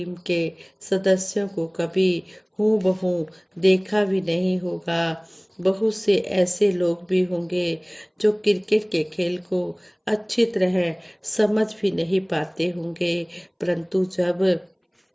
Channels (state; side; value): identical; both; correlation 1.00